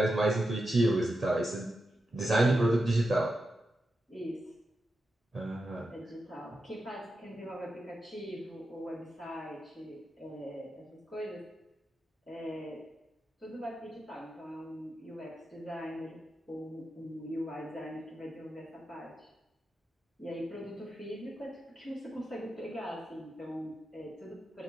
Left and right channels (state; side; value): normal; both; correlation 0.88